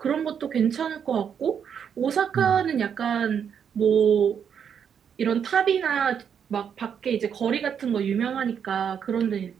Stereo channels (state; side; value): quieter; left; 7.7 dB